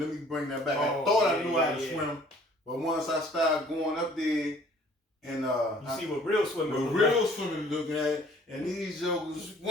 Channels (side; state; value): both; normal; correlation 0.55